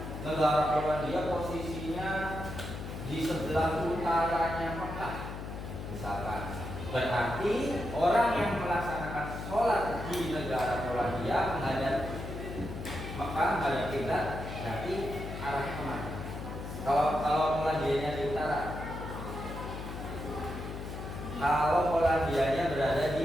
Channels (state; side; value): noise; left; hum, 8 dB below the sound